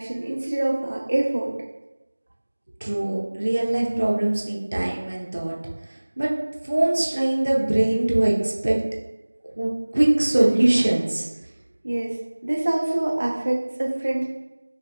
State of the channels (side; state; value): both; inverted; correlation -1.00